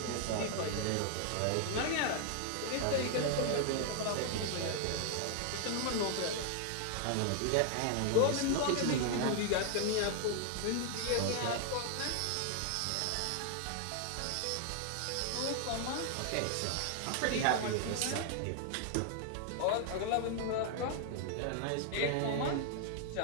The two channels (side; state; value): both; different; correlation 0.00